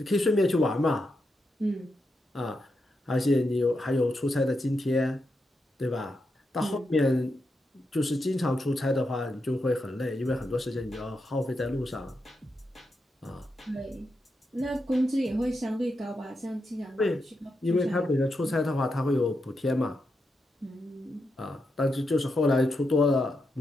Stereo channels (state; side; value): normal; both; correlation 0.85